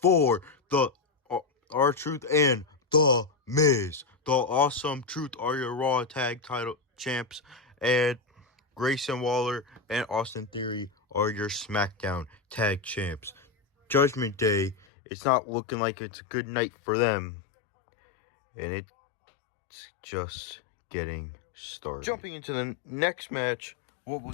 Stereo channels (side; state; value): right; drops out; at 14.9 s